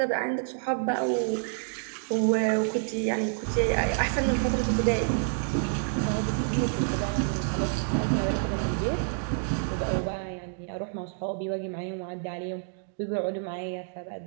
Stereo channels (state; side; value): silent; left; digital silence